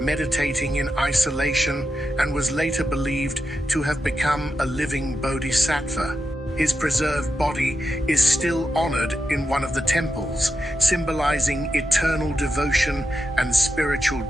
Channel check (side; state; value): both; normal; correlation 0.88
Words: in isolation and was later believed to have become a living bodhisattva. His preserved body is still honored in one of the temples, symbolizing eternal devotion and spiritual